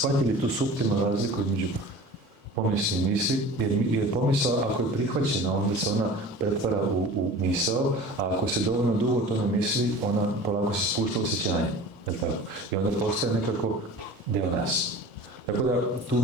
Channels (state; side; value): normal; both; correlation 0.39